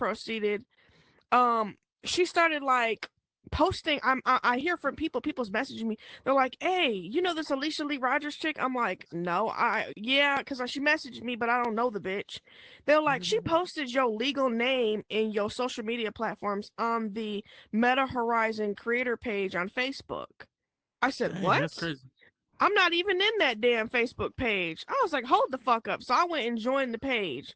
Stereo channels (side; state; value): both; identical; correlation 1.00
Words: she started like posting. I hear from people's messaging me. They're like, hey, you know this Alicia Lee Rogers chick? I'm like, no, because she messaged me, but I don't know the bitch. They're like, she posted your legal name in your social media platforms on the Meta Horizon creator page on Facebook. I said, Dang, what? that's crazy. I'm not even in that damn Facebook page. I was like, hold the fuck up. So I went and joined the page.